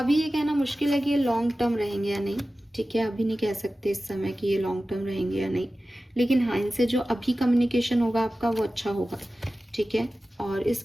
ये कहना मुश्किल है कि ये लॉन्ग टर्म रहेंगे या नहीं, ठीक है। अभी नहीं कह सकते इस समय कि ये लॉन्ग टर्म रहेंगे या नहीं, लेकिन हाँ, इनसे जो अभी कम्युनिकेशन होगा आपका वो अच्छा होगा, ठीक है। और इस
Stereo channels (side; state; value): both; normal; correlation 0.95